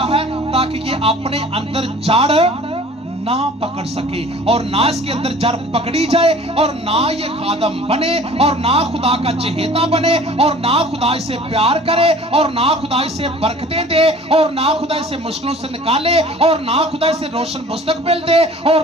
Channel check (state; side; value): normal; both; correlation 0.47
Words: है, ताकि ये अपने अंदर जड़ ना पकड़ सके, और ना इसके अंदर जड़ पकड़ी जाए, और ना ये खादम बने, और ना खुदा का चहेता बने, और ना खुदा इसे प्यार करे, और ना खुदा इसे बरकतें दे, और ना खुदा इसे मुश्किलों से निकाले, और ना खुदा इसे रोशन मुस्तकबिल दे, और